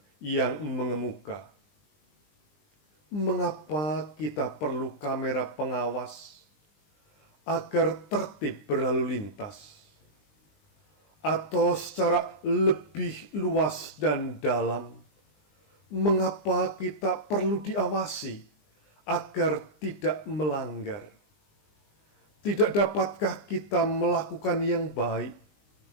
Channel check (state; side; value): late; right; 20 ms